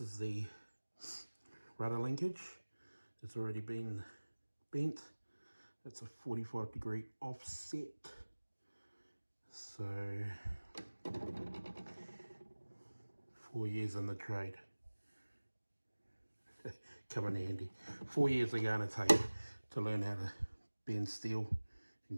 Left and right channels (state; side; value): inverted; both; correlation -1.00